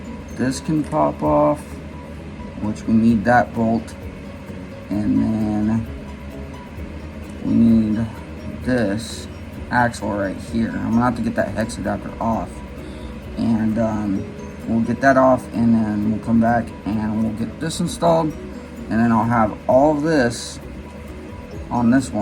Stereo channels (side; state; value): both; identical; correlation 1.00